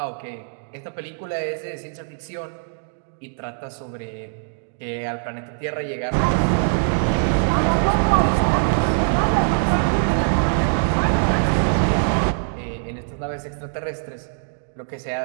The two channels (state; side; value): silent; left; digital silence